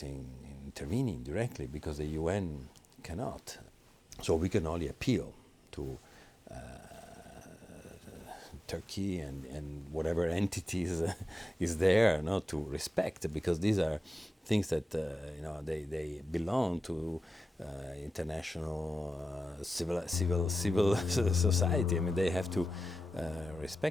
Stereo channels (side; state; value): both; normal; correlation 0.92